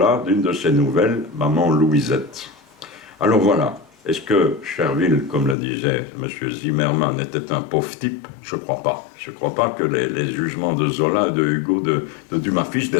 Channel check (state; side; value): drops out; right; at 5.6 s